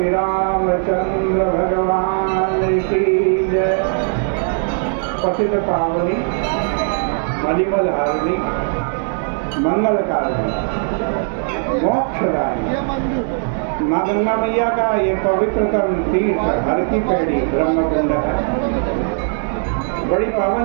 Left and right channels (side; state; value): left; silent; 61 dB below the other